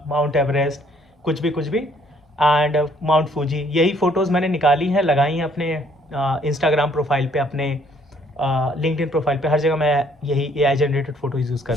Mount Everest, कुछ भी, एंड माउंट फूजी। यही फ़ोटोज़ मैंने निकाली हैं, लगाई हैं अपने इंस्टाग्राम प्रोफाइल पे, अपने लिंक्डइन प्रोफाइल पे, हर जगह मैं यही एआई जनरेटेड फ़ोटोज़ यूज़ कर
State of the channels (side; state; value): both; normal; correlation 0.64